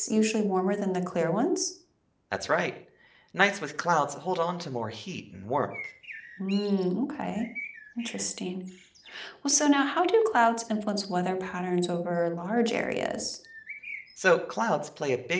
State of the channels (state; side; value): identical; both; correlation 1.00